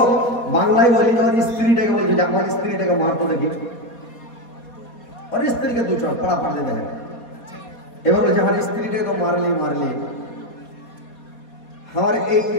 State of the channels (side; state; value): right; late; 4.2 ms